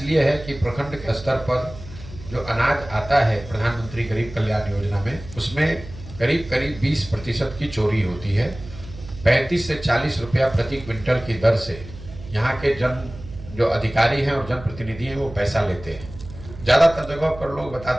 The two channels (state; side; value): noise; right; hum, 15 dB below the sound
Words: है कि प्रखंड के स्तर पर जो अनाज आता है प्रधानमंत्री गरीब कल्याण योजना में, उसमें करीब करीब 20% की चोरी होती है। 35 से 40 रुपया प्रति क्विंटल की दर से यहाँ के जो अधिकारी हैं और जनप्रतिनिधि हैं वो पैसा लेते हैं। ज़्यादातर जगह पर लोग